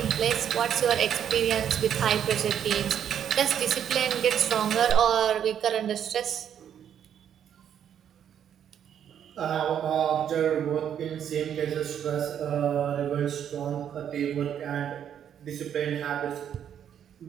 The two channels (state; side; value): quieter; left; 9.2 dB